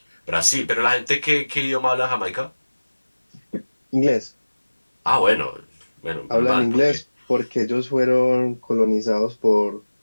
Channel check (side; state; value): both; inverted; correlation -1.00